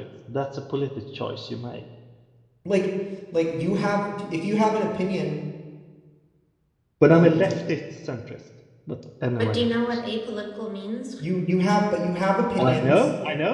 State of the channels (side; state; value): both; identical; correlation 1.00